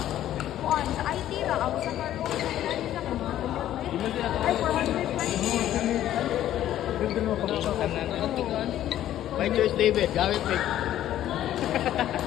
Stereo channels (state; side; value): quieter; right; 12.4 dB